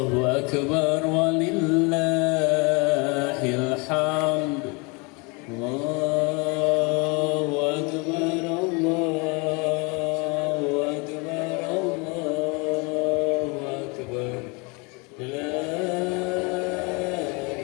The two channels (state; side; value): quieter; right; 29.8 dB